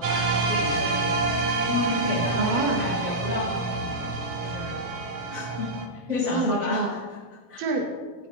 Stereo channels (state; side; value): late; left; 13 ms